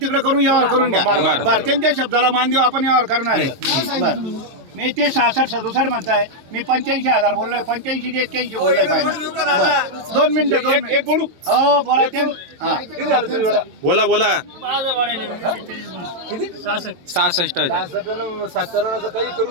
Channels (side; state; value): left; late; 22 ms